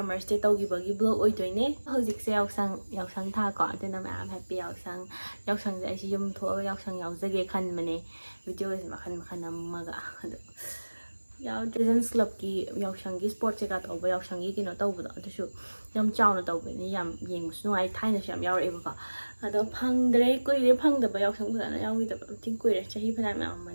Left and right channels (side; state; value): both; inverted; correlation -1.00